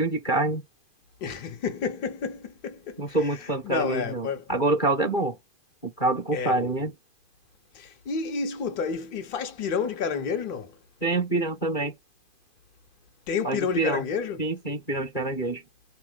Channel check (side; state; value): right; late; 2.5 ms